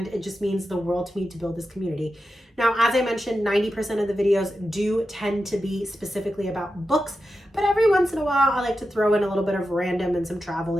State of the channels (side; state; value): both; normal; correlation 0.90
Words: it just means the world to me to build this community. Now, as I mentioned, 90% of the videos do tend to be specifically about books, but every once in a a while, I like to throw in a little bit of random and some travel